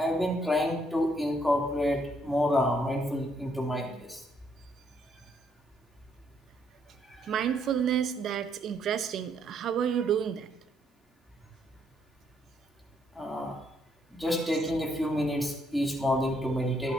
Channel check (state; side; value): normal; both; correlation 0.71